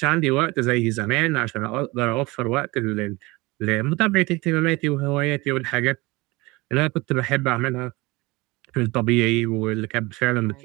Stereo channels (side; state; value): left; quieter; 22.8 dB